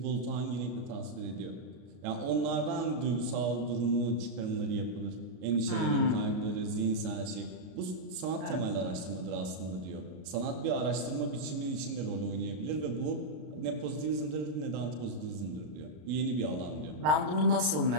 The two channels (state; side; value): late; left; 33 ms